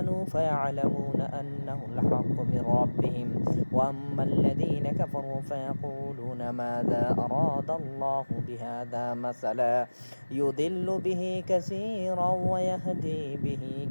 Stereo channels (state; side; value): inverted; both; correlation -1.00